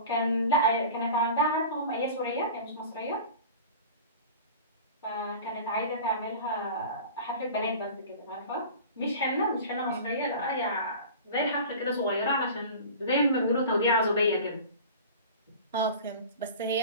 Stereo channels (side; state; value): both; inverted; correlation -0.37